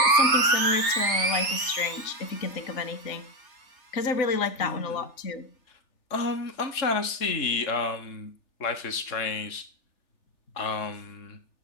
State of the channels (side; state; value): right; late; 3.4 ms